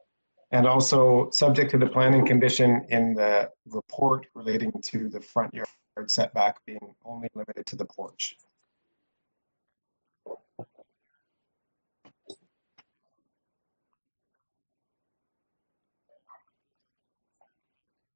And also subject to the planning condition in the report relating to the front yard setback being only limited to the porch. All right, thank you. Seconder? Aaron, all in favor? You have your approval, sir. Thank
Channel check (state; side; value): inverted; both; correlation -1.00